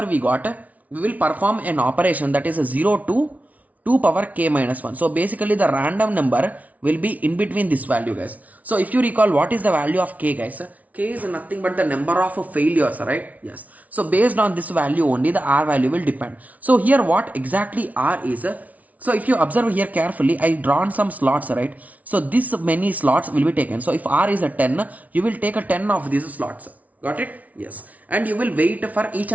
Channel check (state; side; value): late; left; 0.071 ms